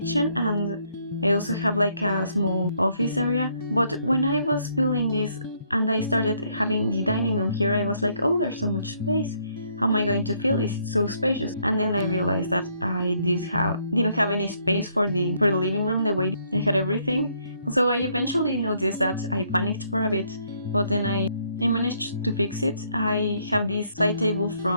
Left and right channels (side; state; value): both; inverted; correlation -0.69